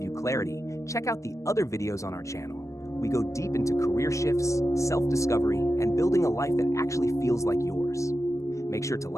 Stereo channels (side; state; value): right; late; 0.15 ms